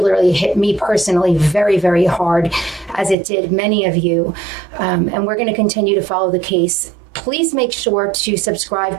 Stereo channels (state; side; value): drops out; left; at 3.2 s